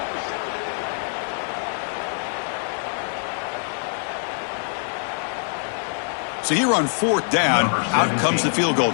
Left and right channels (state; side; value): silent; right; 62 dB below the other